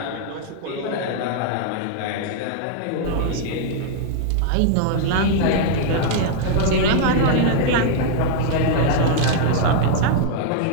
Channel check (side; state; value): both; different; correlation -0.01